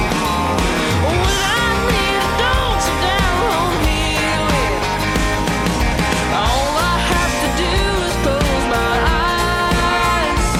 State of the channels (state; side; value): identical; both; correlation 1.00